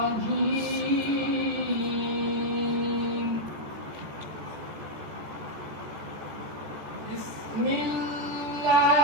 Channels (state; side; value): late; left; 14 ms